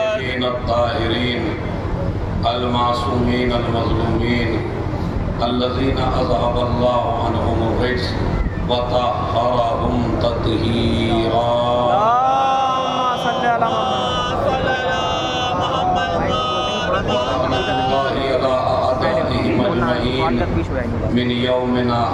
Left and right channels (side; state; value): both; identical; correlation 1.00